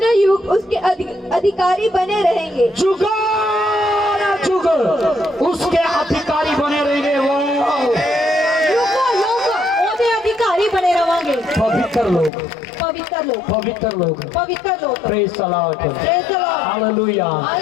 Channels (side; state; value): right; drops out; at 12.3 s